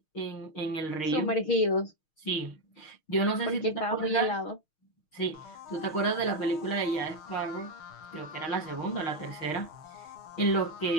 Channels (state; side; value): late; right; 6.4 ms